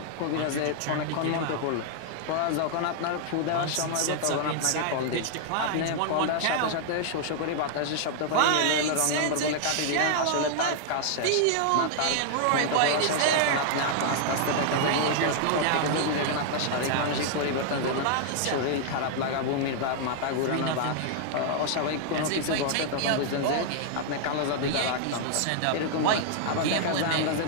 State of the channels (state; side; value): different; both; correlation 0.00